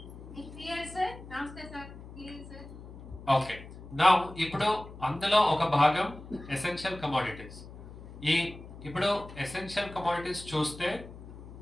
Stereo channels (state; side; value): noise; left; hum, 15 dB below the sound